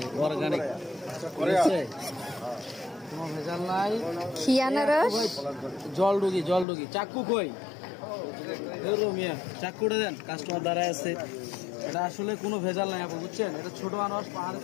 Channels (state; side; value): drops out; right; at 6.7 s